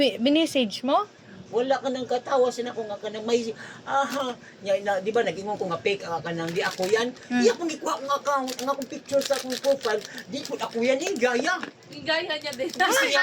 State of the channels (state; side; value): identical; both; correlation 1.00